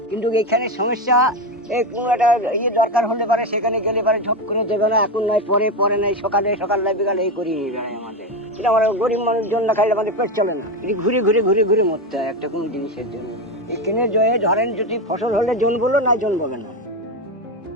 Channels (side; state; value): both; normal; correlation 0.14